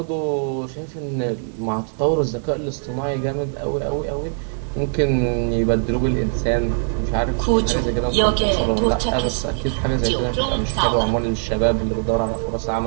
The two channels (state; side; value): silent; left; digital silence